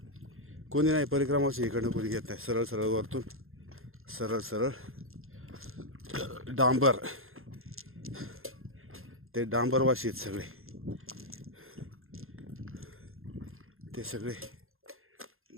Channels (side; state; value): left; late; 0.61 ms